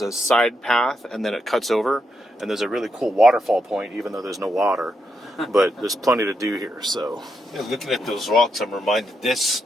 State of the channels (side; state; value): both; normal; correlation 0.81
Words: a side path, and then it cuts over, and there's a really cool waterfall point, even though there's no water. But there's plenty to do here. So Looking at those rocks, I'm reminded